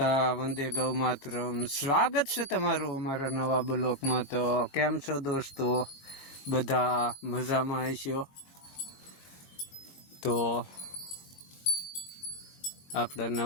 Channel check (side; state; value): right; late; 22 ms